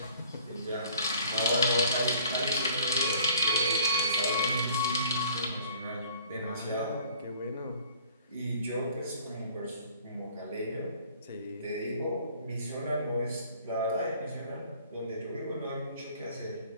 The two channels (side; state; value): both; inverted; correlation -0.52